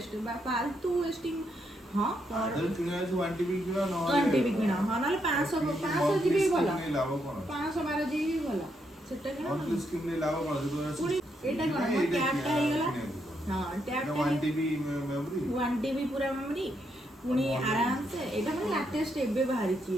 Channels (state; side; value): normal; both; correlation 0.78